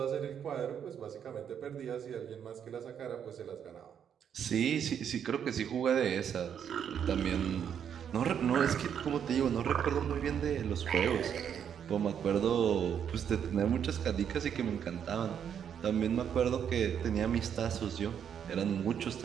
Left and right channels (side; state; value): left; quieter; 8.4 dB